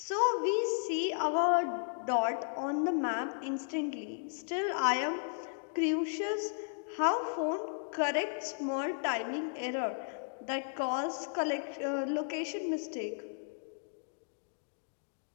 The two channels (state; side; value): silent; right; digital silence